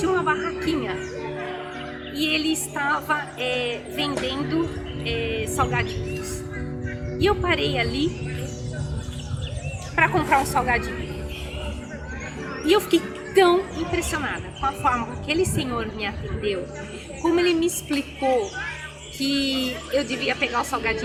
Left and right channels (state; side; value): identical; both; correlation 1.00